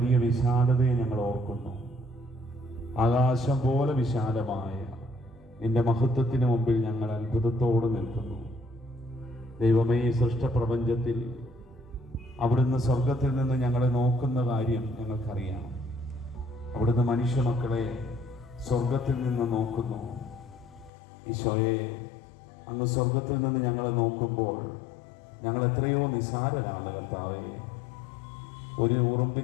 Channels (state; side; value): drops out; right; at 20.9 s